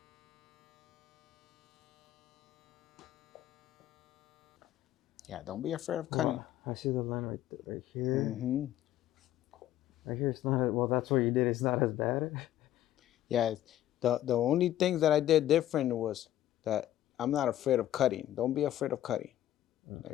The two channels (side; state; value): right; quieter; 12.9 dB